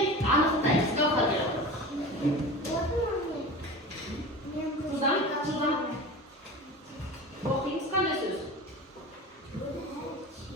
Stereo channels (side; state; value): both; normal; correlation 0.33